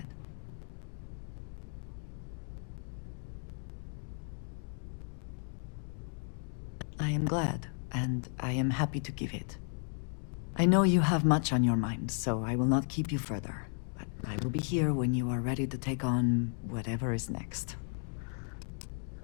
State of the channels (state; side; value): silent; right; 55 dB below the other